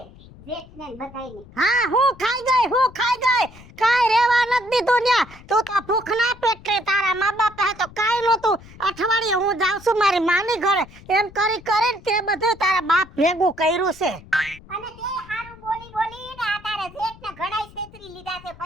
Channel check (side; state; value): left; noise; rumble, 21 dB below the sound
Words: જેઠને બધાઈને. હા હું ખાઈ ગઈ કાઈ રેવા નથી દીધું ન્યા. તું તો ભૂખના પેટે તારા મા બાપ હે તો કાઈ નહોતું. અઠવાડિયે હું જાઉં છું મારી માની ઘરે, એમ કરી કરીને તે બધું તારા બાપ ભેગું કર્યું છે. અને તે હારું બોલી ને આ તારા જેઠને ઘણાય છેતરી લીધા છે,